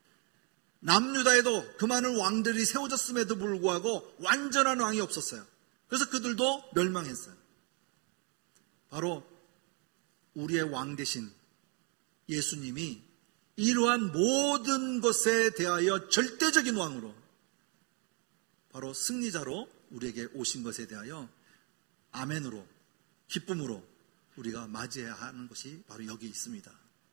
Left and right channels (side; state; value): left; quieter; 34.9 dB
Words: 남유다에도 그 많은 왕들이 세워졌음에도 불구하고 완전한 왕이 없었어요. 그래서 그들도 멸망했어요. 바로 우리의 왕 대신 예수님이 이러한 모든 것에 대하여 절대적인 왕으로, 바로 승리자로 우리에게 오신 것에 대하여 아멘으로, 기쁨으로 우리가 맞이해야 하는 것이 바로 여기 있습니다.